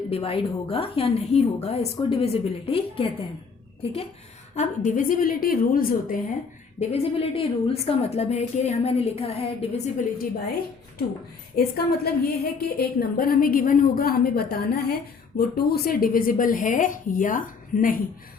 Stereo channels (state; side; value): quieter; right; 5.2 dB